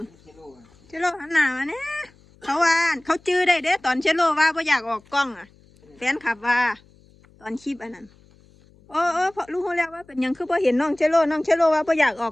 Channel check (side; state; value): left; noise; hum, 29 dB below the sound